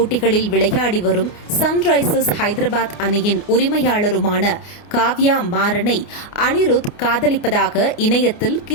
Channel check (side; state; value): right; late; 29 ms